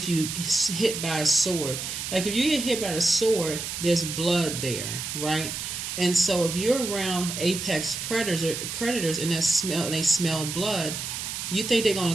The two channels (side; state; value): right; noise; hiss, 5 dB below the sound